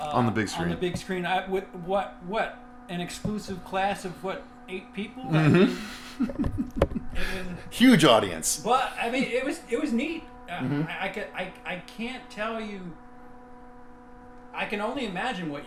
on the big screen. On the big screen, what an exclusive class of 8 people. Huge audience. But I mean, it was neat. I can't tell you. I can only imagine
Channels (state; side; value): identical; both; correlation 1.00